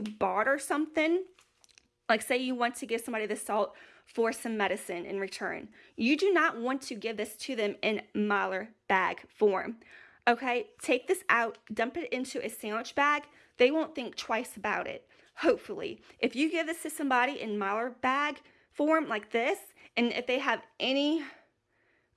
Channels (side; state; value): both; identical; correlation 1.00